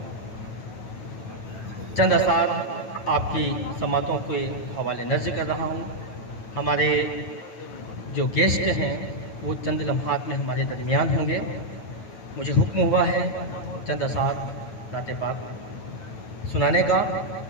चंद असार आपकी समातों के हवाले नज़र कर रहा हूँ। हमारे जो गेस्ट हैं वो चंद लम्हात में हमारे दरमियान होंगे। मुझे हुक्म हुआ है चंद असार नाते पाक सुनाने का।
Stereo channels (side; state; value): right; late; 9.2 ms